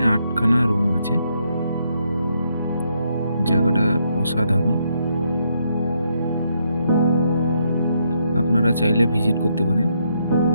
8খানা রুম আছে। জায়গাটা অসাধারণ, আপনারা চাইলে ভিজিট করতে পারেন।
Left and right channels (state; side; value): inverted; both; correlation -0.77